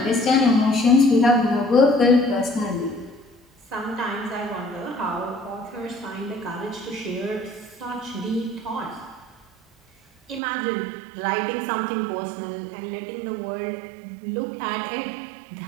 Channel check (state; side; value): drops out; left; at 10.4 s